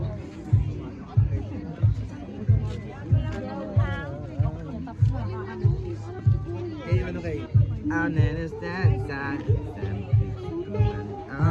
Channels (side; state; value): both; identical; correlation 1.00